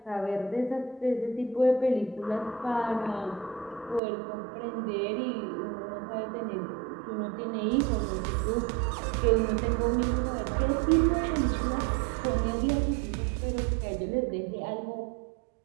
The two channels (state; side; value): drops out; left; at 4.0 s